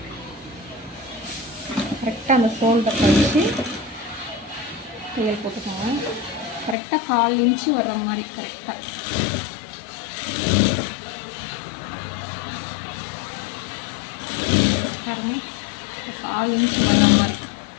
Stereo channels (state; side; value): drops out; right; at 6.8 s